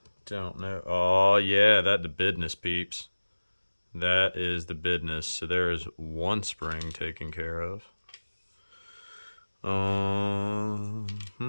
Don't know. Oh yeah, that the business, peeps. That is the business. So there is one spring taken care of.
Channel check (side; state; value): both; inverted; correlation -1.00